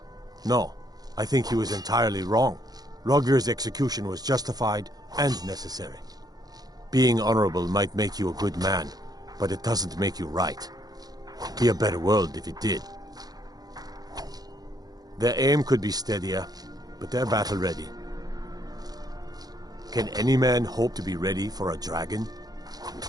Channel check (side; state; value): left; late; 0.19 ms